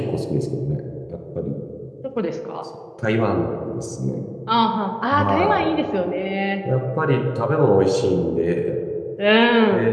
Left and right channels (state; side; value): identical; both; correlation 1.00